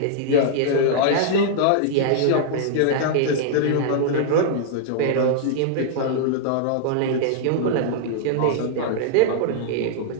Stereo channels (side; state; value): both; different; correlation -0.01